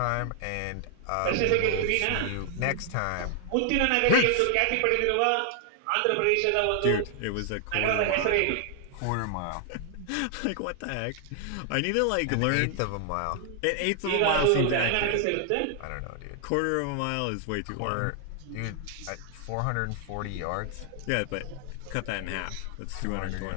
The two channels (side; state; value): both; different; correlation 0.00